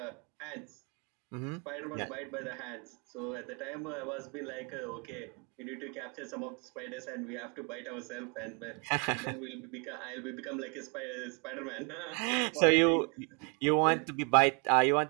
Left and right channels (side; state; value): left; quieter; 34.2 dB